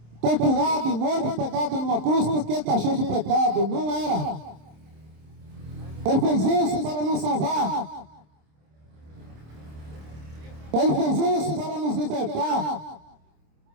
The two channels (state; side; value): late; left; 26 ms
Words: torturado, morto, pegado numa cruz porque ele está cheio de pecado. Não era. Ele fez isso para nos salvar. Ele fez isso para nos libertar